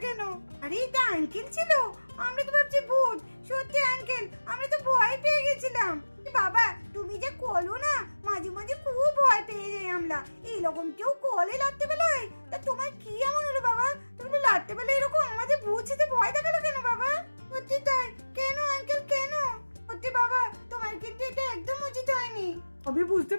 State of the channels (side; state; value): both; inverted; correlation -1.00